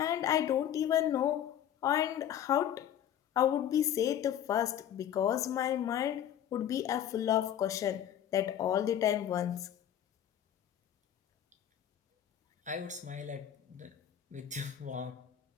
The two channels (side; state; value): right; quieter; 10.4 dB